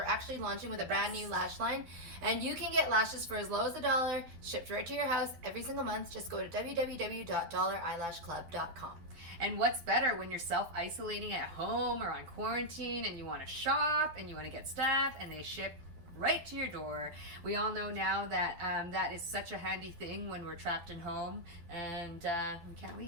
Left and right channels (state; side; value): late; left; 12 ms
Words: actually launching with a brand new lash line, and you can get lashes for as low as $1, shipped right to your house every single month. Just go to www.dollareyelashclub.com. And what's better when you're self-isolating at home or on quarantine and you want to shop and you want to get stuff and they ship right to your door. We all know now that that is such a handy thing when we're trapped in home and we can't